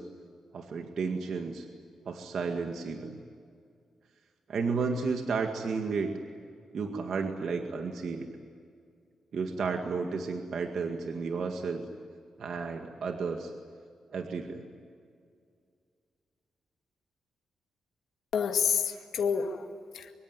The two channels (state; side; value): normal; both; correlation 0.76